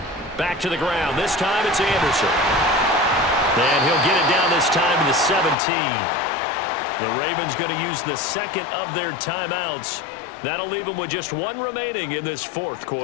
Back to the ground. This time it's Anderson. And he'll get it down this time to the 17. The Ravens going to use the second of their timeouts That'll leave them with just one remaining in this fourth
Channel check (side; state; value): right; drops out; at 5.6 s